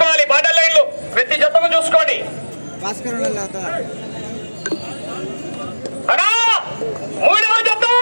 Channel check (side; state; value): both; inverted; correlation -1.00